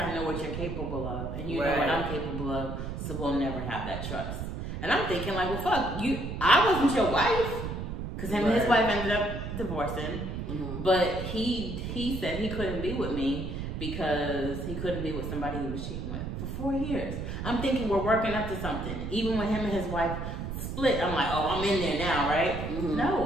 know what you're capable of, and you know what I'm capable of, so we'll never have that trust. And I'm thinking like, well, fuck, I wasn't your wife. Because him and his wife ended up divorcing. But he said he couldn't be with me because he couldn't be with somebody he was cheating with for 4 years. I'm thinking we're working up to something. Even when him and his wife split, I'm like, oh, I'm in there now, right?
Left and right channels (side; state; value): right; noise; rumble, 5 dB below the sound